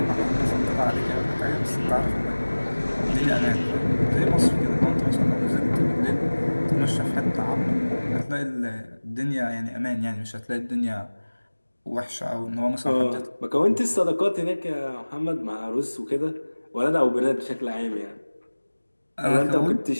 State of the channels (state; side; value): inverted; both; correlation -1.00